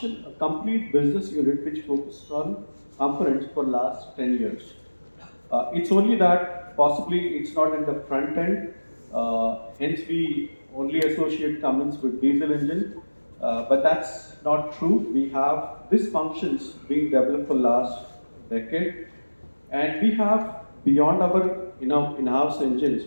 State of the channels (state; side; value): inverted; both; correlation -1.00